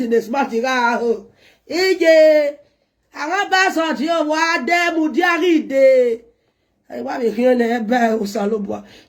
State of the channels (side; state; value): both; identical; correlation 1.00